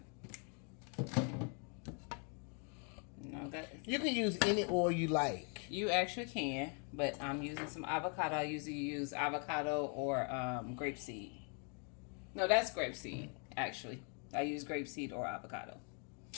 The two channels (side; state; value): right; quieter; 39.0 dB